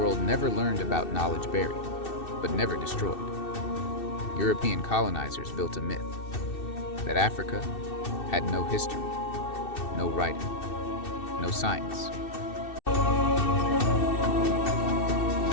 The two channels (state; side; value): late; right; 2.7 ms